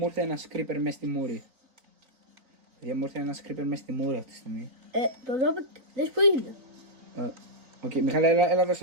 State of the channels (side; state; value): left; late; 3.9 ms